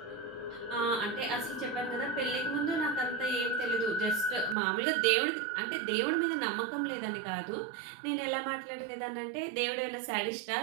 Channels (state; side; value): drops out; left; at 4.5 s